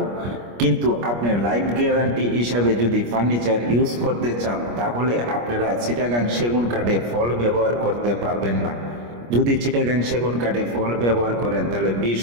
কিন্তু আপনি লাইফ গ্যারান্টি হিসাবে যদি ফার্নিচার ইউজ করতে চান, তাহলে আপনারা চিটাগাং সেগুন কাঠে ফল ব্যবহার করতে পারবেন না। যদি চিটাগাং সেগুন কাঠে ফল ব্যবহার করেন, তাহলে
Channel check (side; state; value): left; late; 25 ms